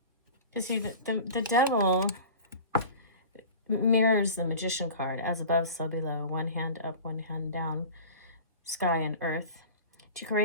You see, the devil mirrors the magician card, as above, so below, one hand up, one hand down, sky and earth, to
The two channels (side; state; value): both; inverted; correlation -0.37